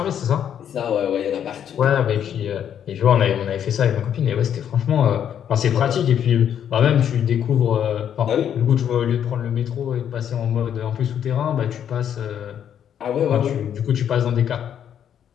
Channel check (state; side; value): quieter; right; 9.2 dB